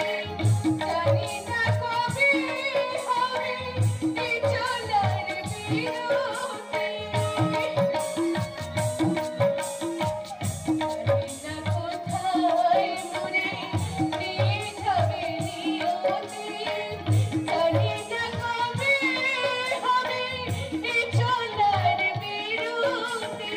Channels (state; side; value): identical; both; correlation 1.00